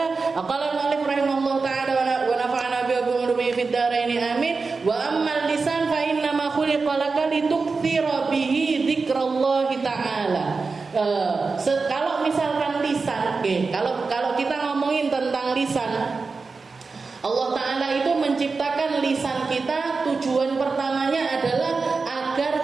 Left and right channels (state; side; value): quieter; left; 4.3 dB